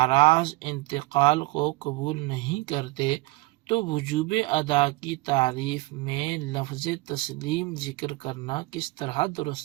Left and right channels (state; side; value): quieter; left; 22.2 dB